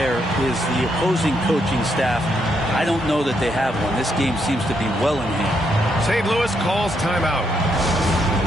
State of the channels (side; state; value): both; normal; correlation 0.77